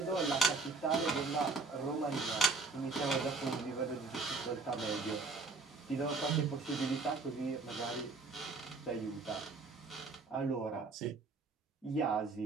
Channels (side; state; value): left; quieter; 3.9 dB